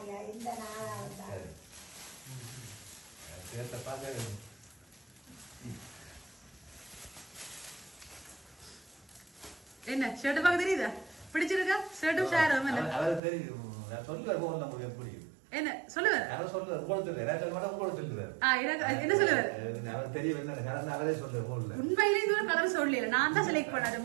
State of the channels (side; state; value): left; drops out; at 13.2 s